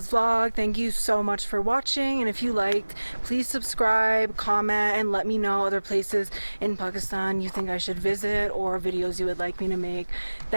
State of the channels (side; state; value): both; inverted; correlation -1.00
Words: vlog. Thank you so much for watching, and if you liked, please subscribe, comment, and let me know other places in Pakistan you think I should visit or videos you would like me to make.